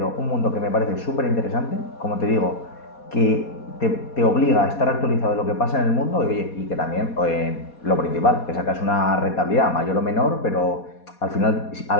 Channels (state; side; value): late; right; 4.2 ms